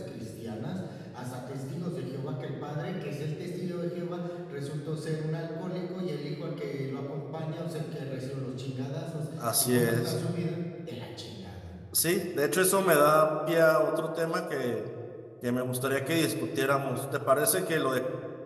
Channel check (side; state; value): both; identical; correlation 1.00